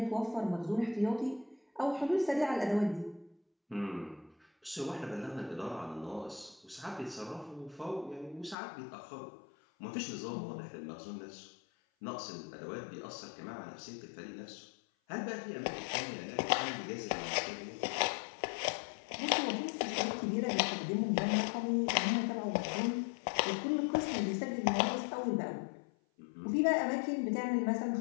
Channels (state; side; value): drops out; right; at 8.6 s